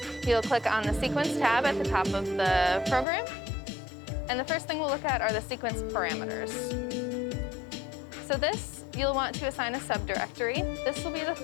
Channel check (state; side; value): drops out; right; at 3.1 s